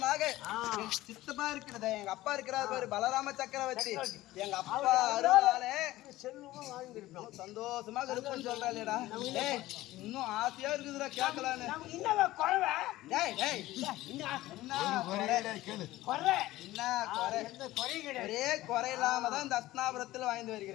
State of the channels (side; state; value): right; quieter; 16.8 dB